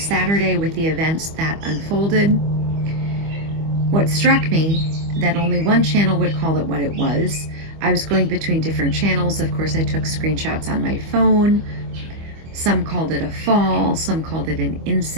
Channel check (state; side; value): late; left; 25 ms